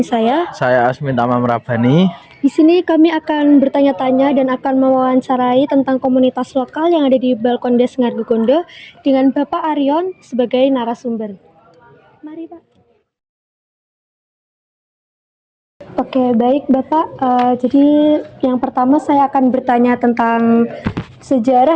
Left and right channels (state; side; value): identical; both; correlation 1.00